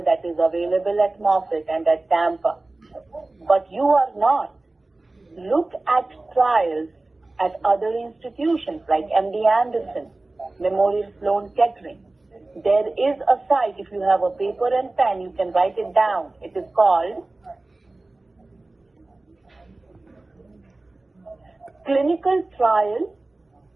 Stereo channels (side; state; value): left; quieter; 3.0 dB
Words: that is available at Moffitt and at Tampa. But you are not. Look at trials at other institutions like MD Anderson, Memorial Sloan Kettering. There is a site, if you have a paper and pen, you can write it down. It is called